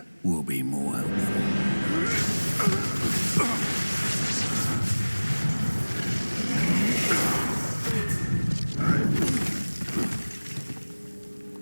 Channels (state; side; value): inverted; both; correlation -1.00